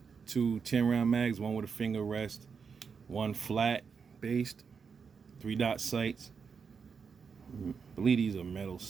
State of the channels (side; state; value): left; quieter; 5.9 dB